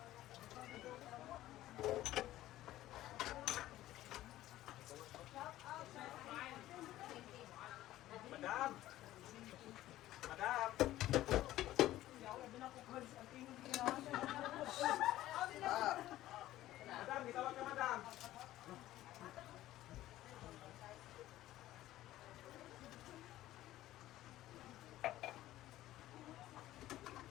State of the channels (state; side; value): quieter; right; 14.8 dB